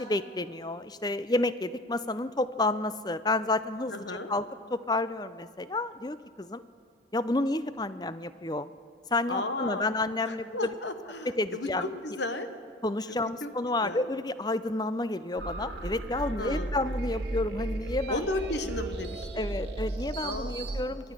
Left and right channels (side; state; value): both; normal; correlation 0.44